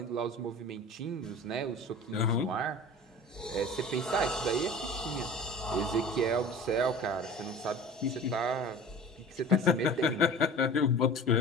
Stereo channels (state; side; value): normal; both; correlation 0.39